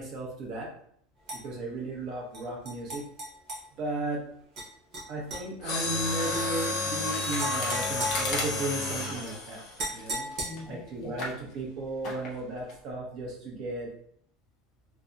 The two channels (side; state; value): both; normal; correlation 0.32